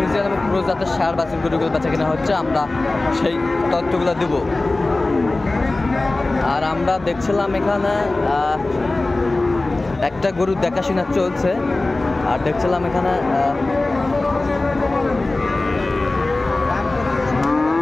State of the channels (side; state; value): right; quieter; 3.0 dB